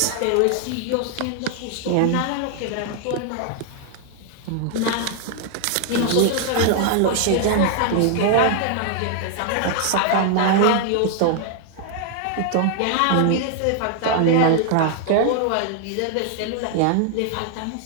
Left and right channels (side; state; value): both; different; correlation 0.00